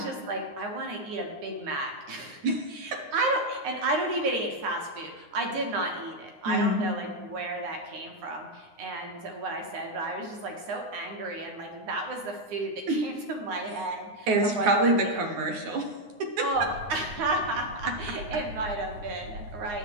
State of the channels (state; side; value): late; left; 9.6 ms